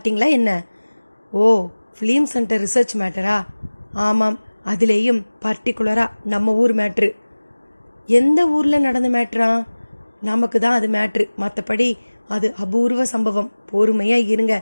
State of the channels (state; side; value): inverted; both; correlation -1.00